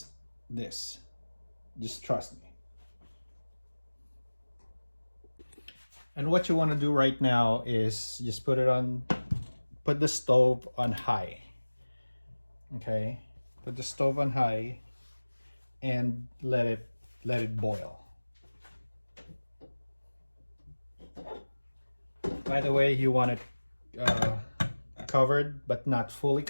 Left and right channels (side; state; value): both; inverted; correlation -1.00